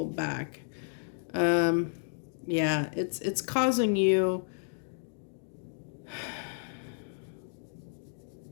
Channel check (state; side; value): silent; right; digital silence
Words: back. Yeah, it's causing you.